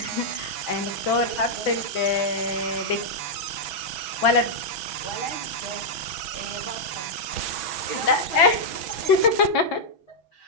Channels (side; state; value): right; late; 6.1 ms